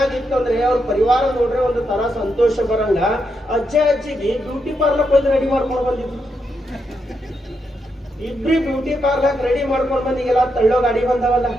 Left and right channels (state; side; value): normal; both; correlation 0.82